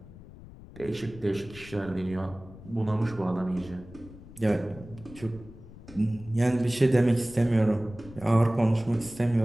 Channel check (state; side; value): noise; left; rumble, 18 dB below the sound